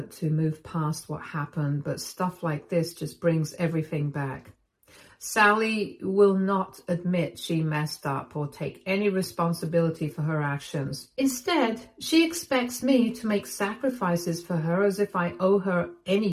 to move past what happened, but stuff like this just brings everything back. Sally will not admit she messed up or take any responsibility for her actions. Instead, she expects me to make sacrifices for her as if I owe her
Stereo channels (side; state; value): both; identical; correlation 1.00